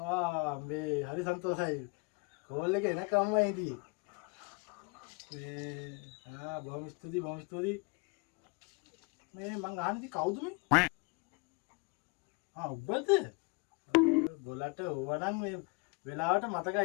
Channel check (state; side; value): quieter; right; 31.0 dB